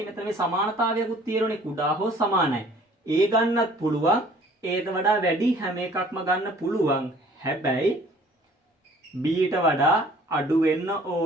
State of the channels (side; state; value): both; normal; correlation 0.54